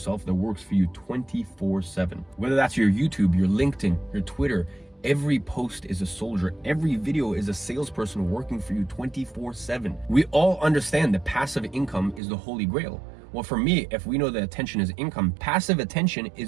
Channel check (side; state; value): left; drops out; at 12.2 s